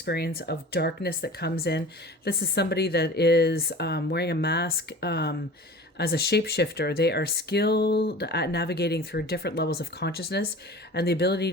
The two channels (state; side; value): normal; both; correlation 0.39